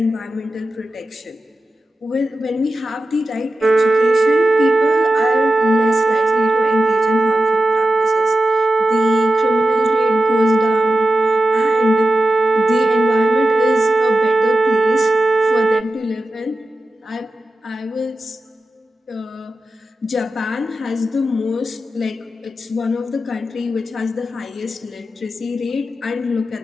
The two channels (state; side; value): normal; both; correlation 0.92